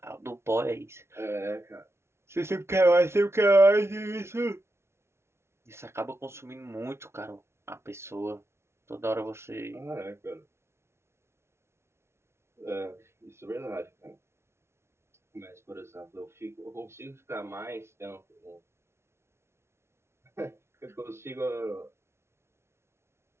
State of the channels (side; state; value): left; late; 0.13 ms